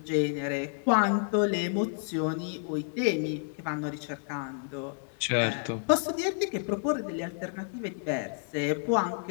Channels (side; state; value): right; silent; 55 dB below the other